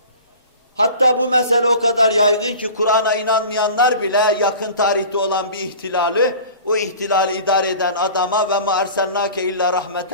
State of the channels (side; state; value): both; inverted; correlation -0.41